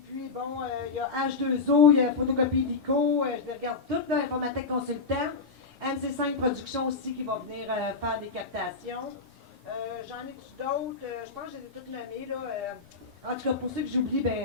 puis, bon, il y a H2O, il y a Photocopie Lico, je les regarde toutes, là, Informatique Consultant. MC5 Productions aussi qui va venir faire des captations. J'en ai-tu d'autres? Je pense que je les ai toutes nommées, là. En tout cas, pour ceux que j'oublie,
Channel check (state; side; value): quieter; right; 4.2 dB